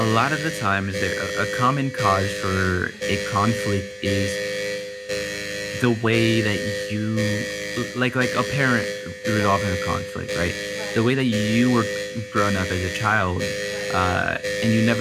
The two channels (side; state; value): both; identical; correlation 1.00